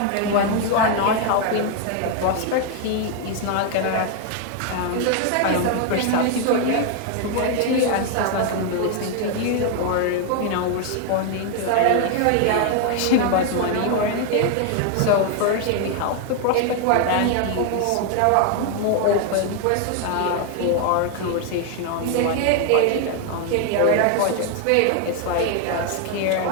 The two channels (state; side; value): different; both; correlation 0.01